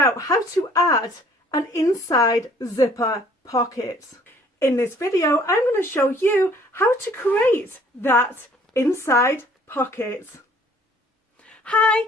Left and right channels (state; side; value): normal; both; correlation 0.57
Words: how to add an inside zipper pocket. In this video, I'm going to show you how to create that inside pocket. Hi,